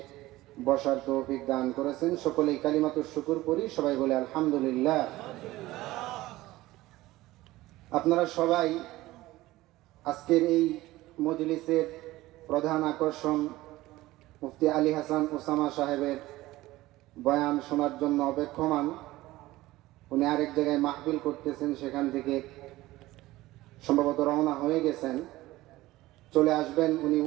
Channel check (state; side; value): quieter; left; 17.7 dB